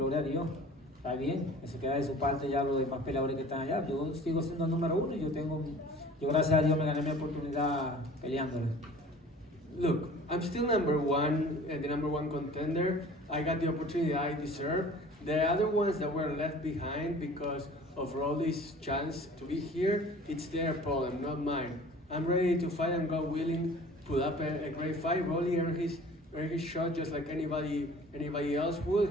a Dios. Está bien, eso queda de su parte ya los demás peleadores que están allá. Yo sigo siendo el número uno y yo gracias a Dios me gané mi oportunidad peleándole. Look, I'm still number one, the number one contender. I got the opportunity I deserve. The other ones that were left behind because of Rolly's chance to be here, it's their problem, not mine. I'm ready to fight and God willing, put up a great fight. Rolly earned his shot just like anybody else would.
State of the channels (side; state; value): both; normal; correlation 0.46